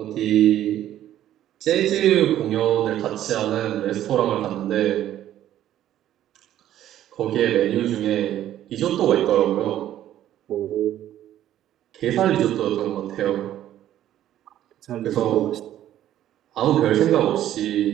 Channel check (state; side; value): quieter; left; 12.2 dB